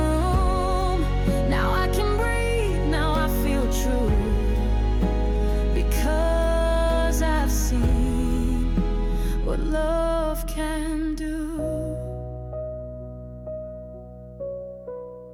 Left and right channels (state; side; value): identical; both; correlation 1.00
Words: room. Now I can breathe, now I feel true, because I've seen what love can do.